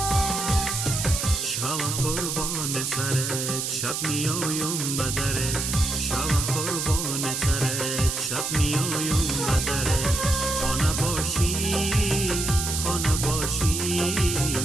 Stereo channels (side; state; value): right; noise; hiss, 2 dB below the sound